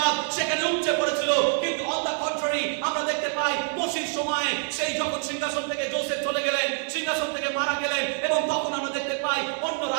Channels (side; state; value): left; silent; 58 dB below the other